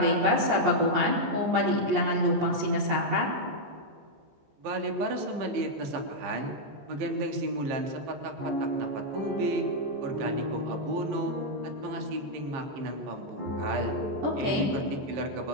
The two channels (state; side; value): late; left; 14 ms